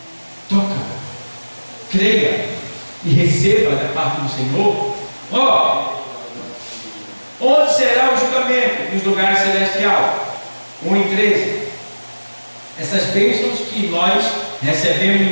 Toca, creia e receba da parte do Senhor. Onde será o julgamento? Nos lugares celestiais. 1 e 13. Essas bênçãos que nós recebemos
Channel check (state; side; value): inverted; both; correlation -1.00